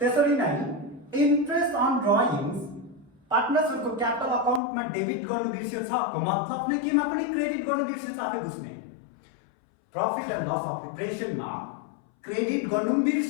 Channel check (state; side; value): drops out; right; at 4.6 s